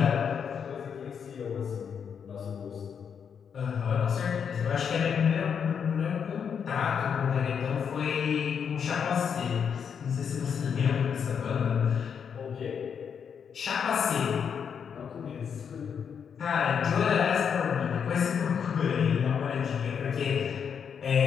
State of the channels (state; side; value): quieter; right; 7.2 dB